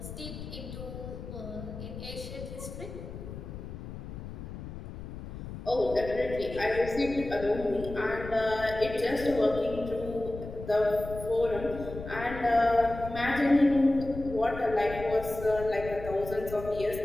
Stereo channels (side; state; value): left; noise; rumble, 10 dB below the sound